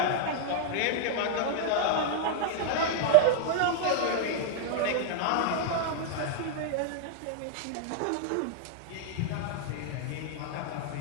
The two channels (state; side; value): different; both; correlation 0.00